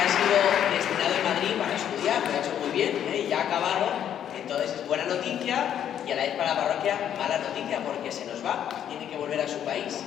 noticia y a la vez para la parroquia mala noticia, porque se nos va, tiene que volver a su país.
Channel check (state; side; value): quieter; right; 9.8 dB